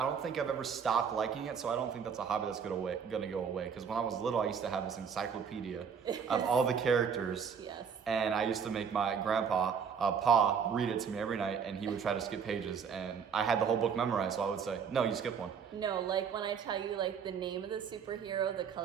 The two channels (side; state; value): left; quieter; 6.8 dB